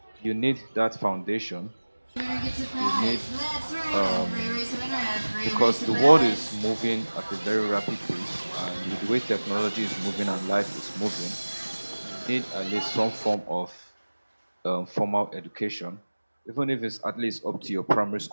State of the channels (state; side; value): inverted; both; correlation -1.00